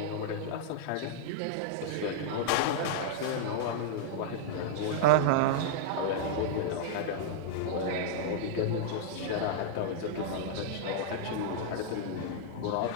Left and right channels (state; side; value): different; both; correlation -0.01